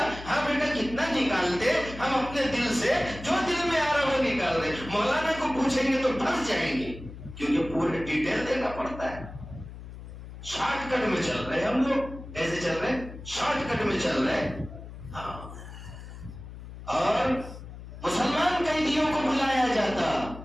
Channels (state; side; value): noise; left; hum, 13 dB below the sound